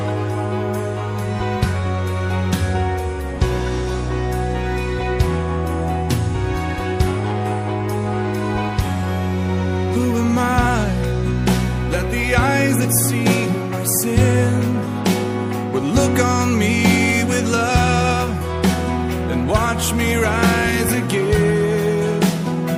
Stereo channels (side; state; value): both; identical; correlation 1.00